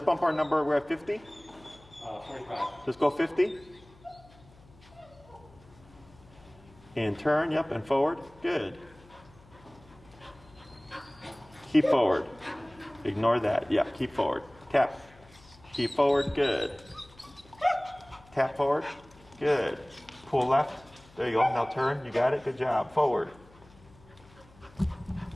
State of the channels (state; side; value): noise; left; hum, 25 dB below the sound